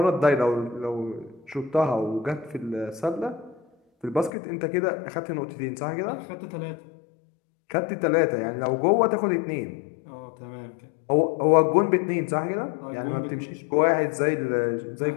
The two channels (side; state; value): right; drops out; at 4.3 s